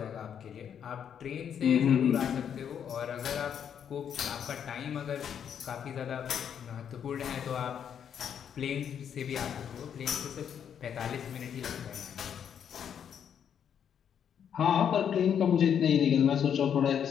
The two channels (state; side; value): quieter; right; 8.4 dB